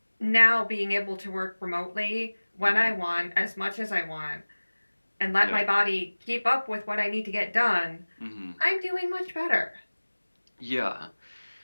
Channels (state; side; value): inverted; both; correlation -1.00